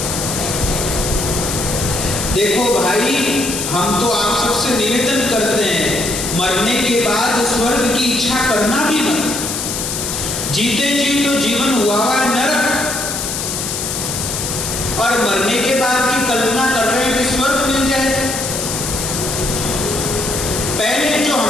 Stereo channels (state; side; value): noise; left; hiss, 3 dB below the sound